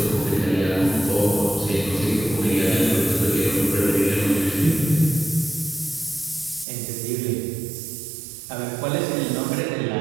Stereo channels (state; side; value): drops out; left; at 6.7 s